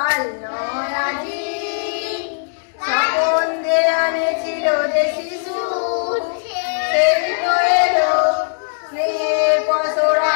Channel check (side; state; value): right; silent; digital silence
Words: নয় আজি সম্বন্ধে আনেছিল যে শিশু সেই তো এলো স্নেহের পসরা